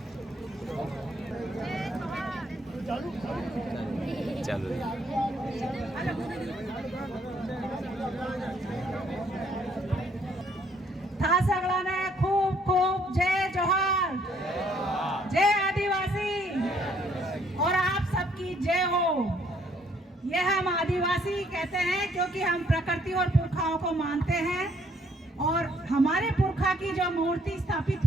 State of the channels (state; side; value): normal; both; correlation 0.66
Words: था सगळ्यांना खूप खूप जय जोहार, जय आदिवासी और आप सबकी जय हो। यह हम आदिवासी कहते हैं क्योंकि हम प्रकृति और पुरखाओं को मानते हैं और हमारे पुरखा की जो मूर्ति स्थापित